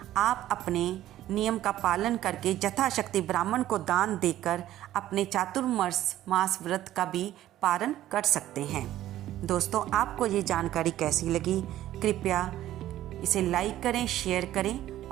आप अपने नियम का पालन करके यथाशक्ति ब्राह्मण को दान देकर अपने चातुर्मास मास व्रत का भी पालन कर सकते हैं। दोस्तों, आपको ये जानकारी कैसी लगी? कृपया इसे लाइक करें, शेयर करें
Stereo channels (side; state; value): left; quieter; 13.5 dB